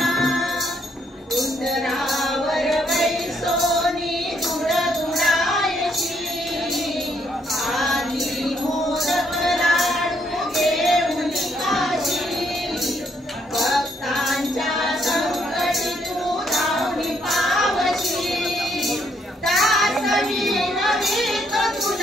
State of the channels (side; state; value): both; normal; correlation 0.72